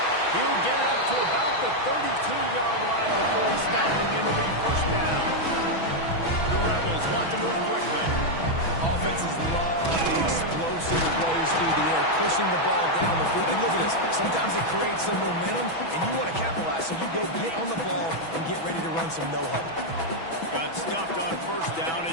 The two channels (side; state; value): right; late; 6.1 ms